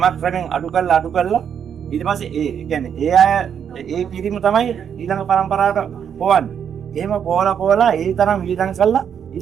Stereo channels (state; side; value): quieter; left; 8.1 dB